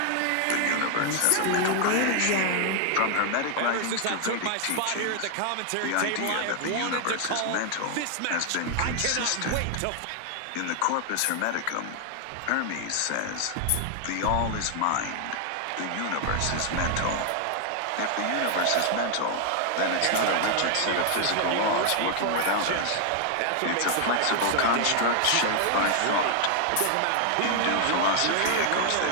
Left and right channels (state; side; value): different; both; correlation 0.00